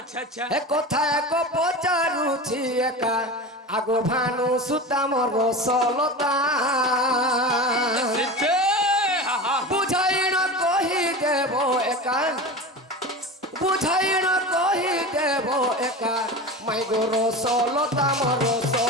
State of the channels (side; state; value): both; normal; correlation 0.28